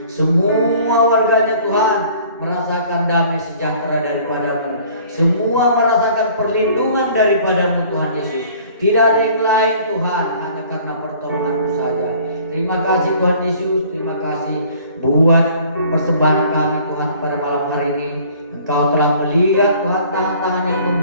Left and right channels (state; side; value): inverted; both; correlation -0.53